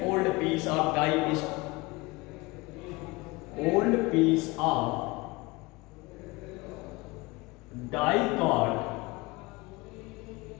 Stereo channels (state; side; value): quieter; right; 23.4 dB